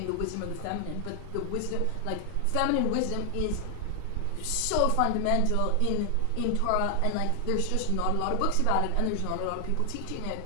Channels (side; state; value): both; different; correlation 0.00